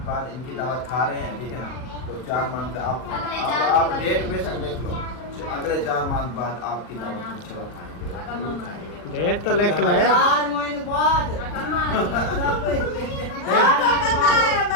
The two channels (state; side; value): late; right; 40 ms